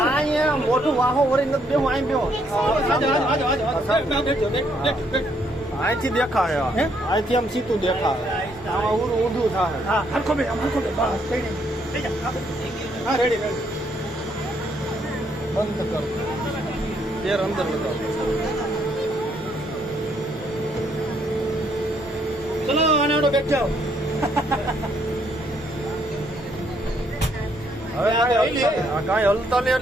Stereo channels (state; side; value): normal; both; correlation 0.71